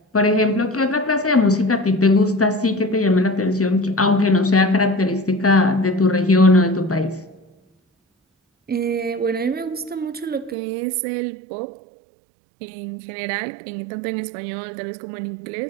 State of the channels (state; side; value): drops out; left; at 10.6 s